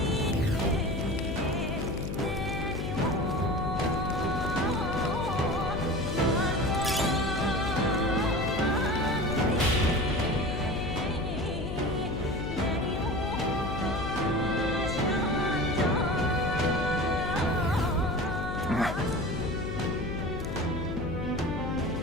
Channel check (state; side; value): noise; left; hum, 4 dB below the sound